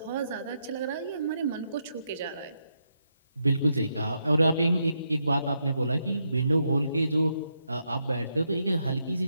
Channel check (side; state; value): both; inverted; correlation -0.81